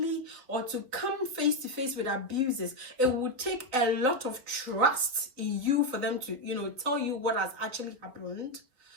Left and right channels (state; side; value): late; left; 4.0 ms